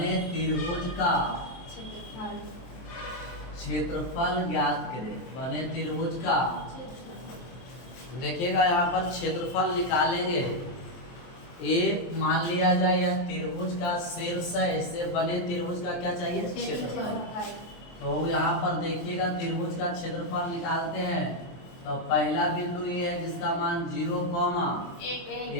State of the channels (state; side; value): late; right; 23 ms